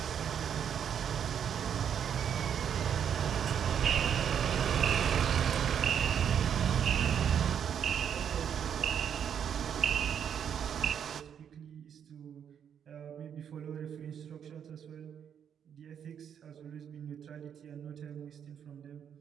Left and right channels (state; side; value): quieter; left; 8.4 dB